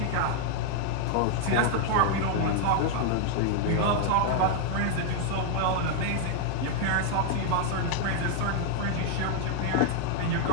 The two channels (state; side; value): different; both; correlation 0.00